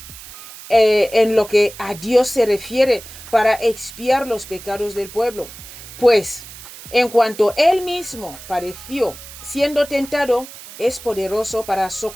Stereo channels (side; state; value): right; noise; hiss, 16 dB below the sound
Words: en lo que a Dios se refiere, para expiar los pecados del pueblo. Pues, en cuanto él mismo padeció siendo tentado, es poderoso para